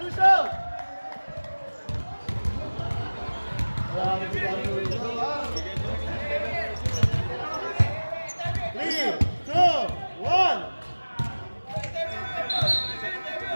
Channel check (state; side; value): inverted; both; correlation -1.00